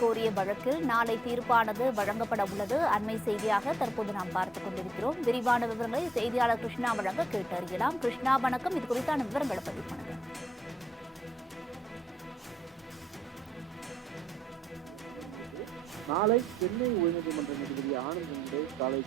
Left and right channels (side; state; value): both; normal; correlation 0.80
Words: வழக்கில் நாளை தீர்ப்பானது வழங்கப்பட உள்ளது. அண்மை செய்தியாக தற்போது நாம் பார்த்துக் கொண்டிருக்கிறோம். விரிவான விவரங்களை செய்தியாளர் கிருஷ்ணா வழங்க கேட்டறியலாம். கிருஷ்ணா, வணக்கம். இது குறித்தான விவரங்களை பதிவு பண்ணுங்க. நாளை சென்னை உயர்நீதிமன்ற நீதிபதி ஆனந்த் காலை